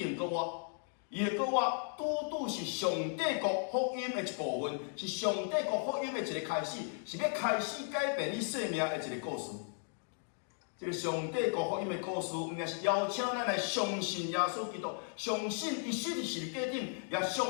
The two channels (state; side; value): silent; right; 54 dB below the other